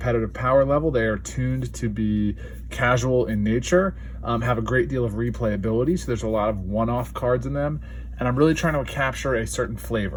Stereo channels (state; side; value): identical; both; correlation 1.00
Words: power level. They are tuned to be casual in nature, have a great deal of replayability. So there's a lot of one-off cards in them. And I'm really trying to capture a certain